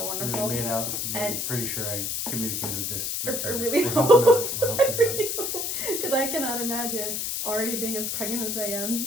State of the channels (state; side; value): noise; left; hiss, 1 dB below the sound